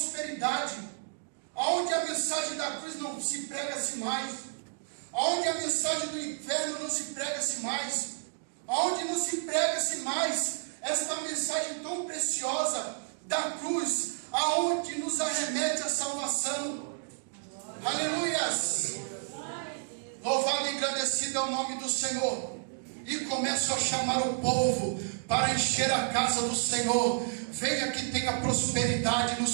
onde a mensagem da cruz não se prega-se mais, onde a mensagem do inferno não se prega-se mais, onde não se prega-se mais esta mensagem tão preciosa da cruz, aonde nos arremete a salvação. Aleluias! Louvado e engrandecido é o nome do Senhor. E começo a chamar o povo para encher a casa do Senhor. Venha que tenha prosperidade no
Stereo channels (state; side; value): silent; left; digital silence